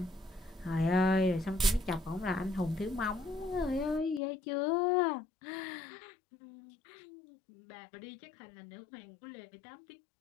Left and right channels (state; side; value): drops out; right; at 4.2 s